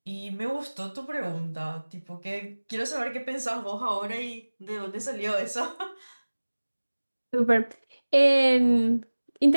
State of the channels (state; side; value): inverted; both; correlation -1.00